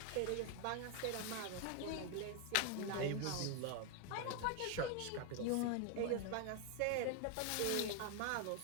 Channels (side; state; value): both; different; correlation 0.01